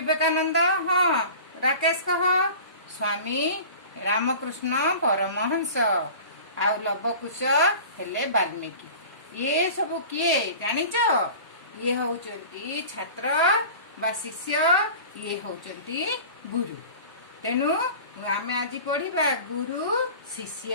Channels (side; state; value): both; inverted; correlation -0.39